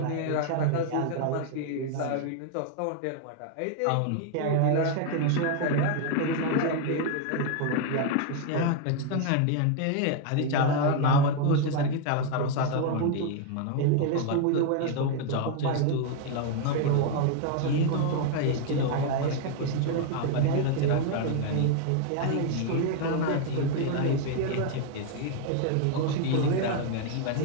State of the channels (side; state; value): both; different; correlation 0.00